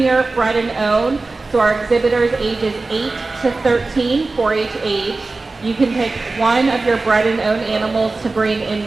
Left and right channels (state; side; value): quieter; left; 3.5 dB